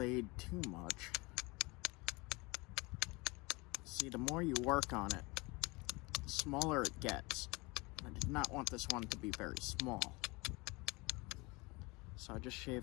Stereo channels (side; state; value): right; quieter; 25.5 dB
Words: too much. See, the more you work on it, the smaller it gets. I did not want this one to be very small. So I just